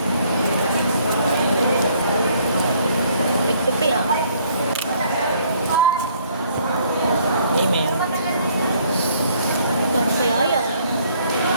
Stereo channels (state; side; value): inverted; both; correlation -0.63